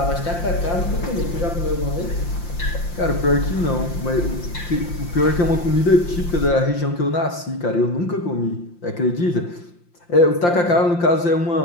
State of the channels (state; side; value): late; right; 5.8 ms